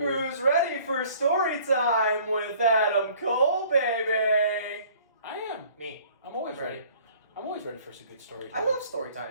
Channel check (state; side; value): inverted; both; correlation -0.54